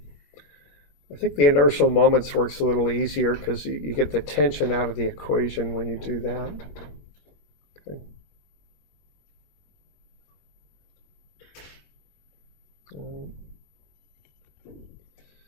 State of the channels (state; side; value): late; right; 21 ms